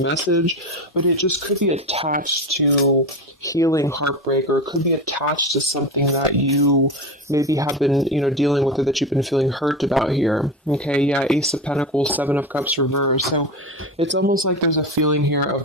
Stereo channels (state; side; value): normal; both; correlation 0.23